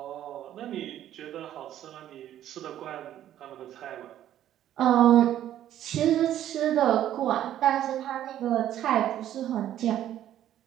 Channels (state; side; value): quieter; left; 11.7 dB